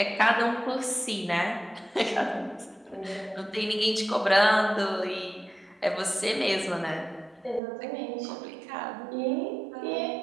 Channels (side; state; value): left; drops out; at 7.6 s